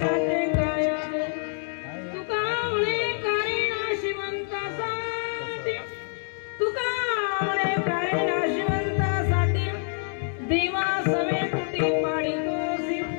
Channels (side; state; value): right; silent; 61 dB below the other